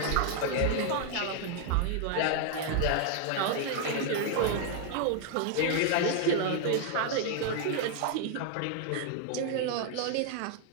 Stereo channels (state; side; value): different; both; correlation 0.00